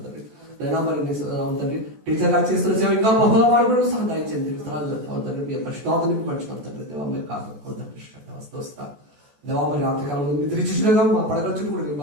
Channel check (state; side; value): late; left; 14 ms